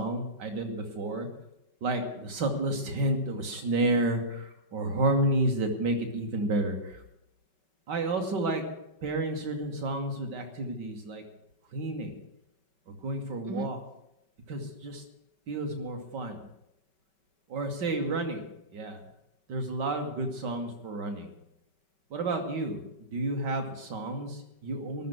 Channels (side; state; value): left; late; 5.3 ms